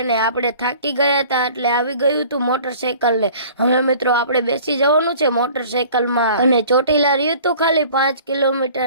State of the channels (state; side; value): inverted; both; correlation -0.48